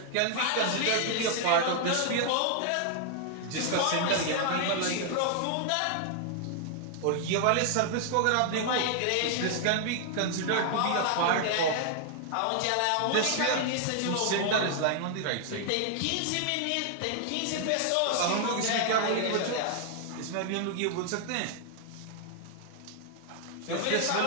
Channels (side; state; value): both; different; correlation 0.00